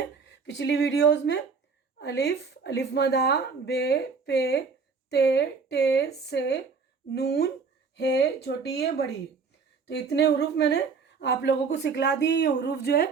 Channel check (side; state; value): left; quieter; 5.1 dB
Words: पिछली वीडियोज़ में अलिफ, अलिफ मदा, बे, पे, ते, टे, से, नून, हे, छोटी है, बड़ी है, तो इतने हरूफ मैंने आप लोगों को सिखला दिए। ये हरूफ जो है